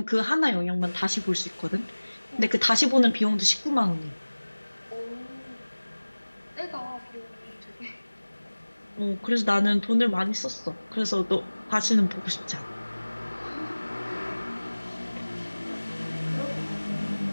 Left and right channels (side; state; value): both; inverted; correlation -1.00